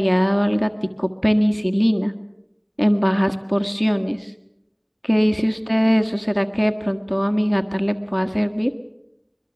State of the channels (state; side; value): identical; both; correlation 1.00